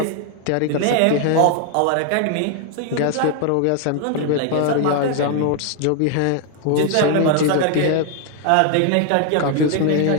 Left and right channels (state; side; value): different; both; correlation 0.00